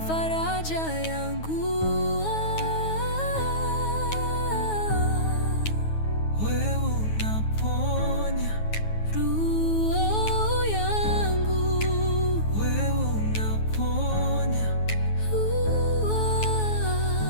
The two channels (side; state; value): right; late; 9.4 ms